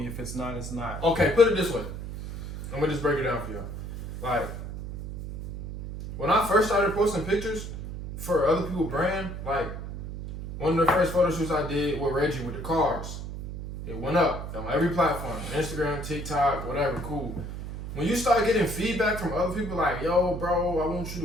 If it's not, it's not. Okay, put it this way. I'm gonna just break it down for y'all. Like, when I first started posting pictures for other people's brand, like one of the first photo shoots I did with Reggie with the cars. It went up on every platform, Instagram, TikTok, whatever, cool. When you start getting feedback from other people like, yo, bro, I want you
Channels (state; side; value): noise; right; hum, 8 dB below the sound